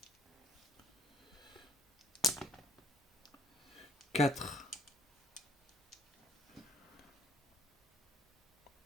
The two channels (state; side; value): normal; both; correlation 0.57